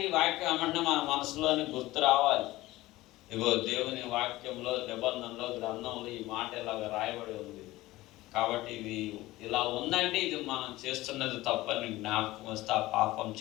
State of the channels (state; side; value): quieter; right; 18.0 dB